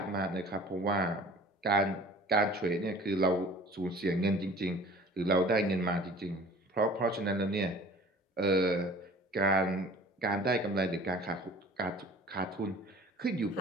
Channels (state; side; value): normal; both; correlation 0.46